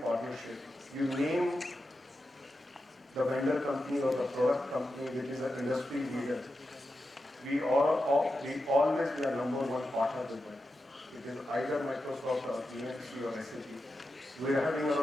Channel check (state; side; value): normal; both; correlation 0.89